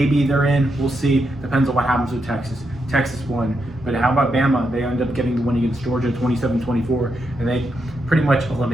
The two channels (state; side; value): normal; both; correlation 0.83